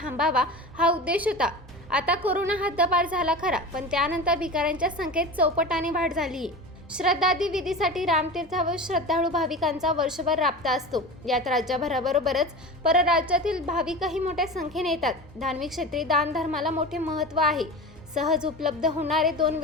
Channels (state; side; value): normal; both; correlation 0.31